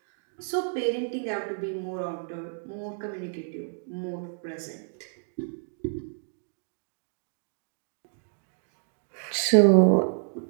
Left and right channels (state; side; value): silent; left; digital silence